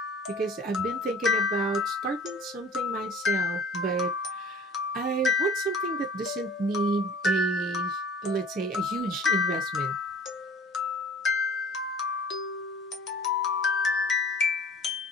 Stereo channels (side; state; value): both; normal; correlation 0.47